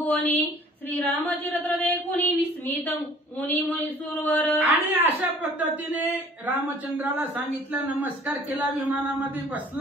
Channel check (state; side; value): normal; both; correlation 0.52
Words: श्रीरामचरित्र देखुनी विस्मित मुनी मुनीसुरवर. आणि अशा पद्धतीने रामचंद्राला सांगितलं, नमस्कार केला, विमानामध्ये